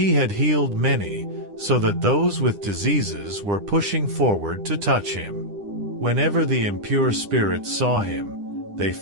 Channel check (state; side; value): late; left; 9.9 ms